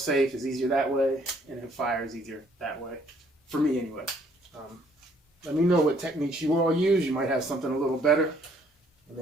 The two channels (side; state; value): both; normal; correlation 0.64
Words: is easier that way, and then fire is easier that way, for me anyway. Let me know what techniques you all use. You might have something a little better, and